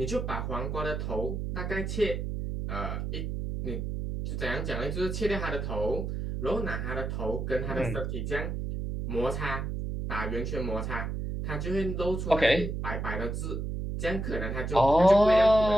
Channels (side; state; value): right; noise; hum, 3 dB below the sound